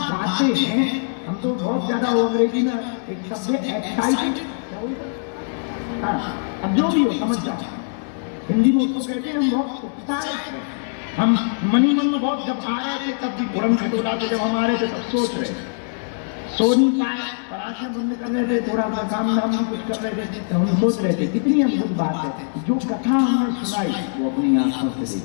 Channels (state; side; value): silent; right; digital silence